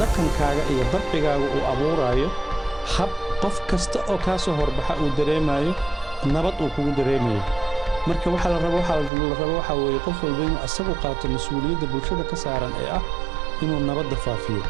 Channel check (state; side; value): drops out; left; at 9.1 s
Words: dhaqankaaga iyo dabcigaaga uu abuuraayo hab qof kasta oo kaa soo horbaxa uu dareemayo nabad uu kugu dareemayo marka waxa la rabo waxa weeye qof walba inuu asagu qaato mas'uuliyadda bulshada ka saaran ee ah inuu nabadda faafiyo